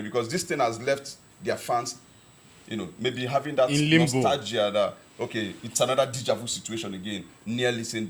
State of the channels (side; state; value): both; identical; correlation 1.00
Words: Because this thing has left their fans, maybe having that in limbo. nostalgia that, okay, it's another deja vu situation again, nearly